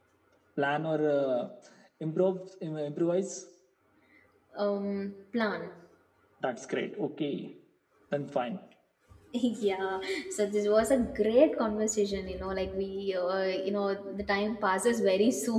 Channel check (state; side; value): identical; both; correlation 1.00